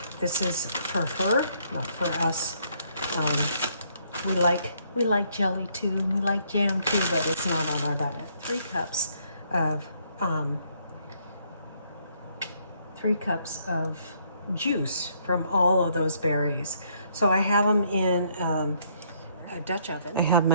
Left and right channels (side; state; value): both; inverted; correlation -0.69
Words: this is for her, not for us. We like jelly too, we like jam too, but it's not on our diet. 3 cups of juice from all of those berries. So I have them in a Dutch oven. I have